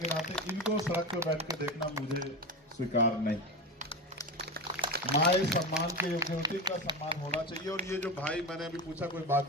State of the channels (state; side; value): normal; both; correlation 0.21